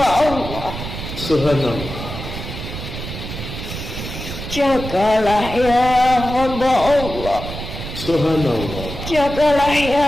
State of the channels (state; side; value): noise; right; rumble, 8 dB below the sound